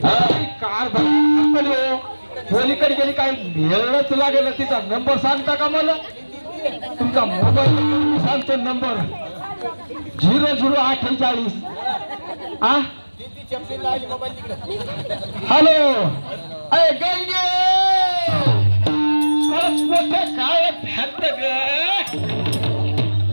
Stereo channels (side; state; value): both; inverted; correlation -1.00